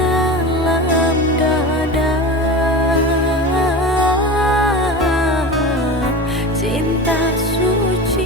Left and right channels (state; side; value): normal; both; correlation 0.29